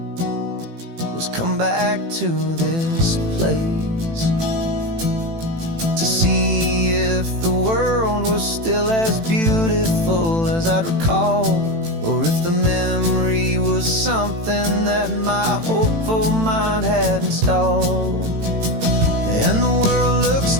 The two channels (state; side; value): late; left; 18 ms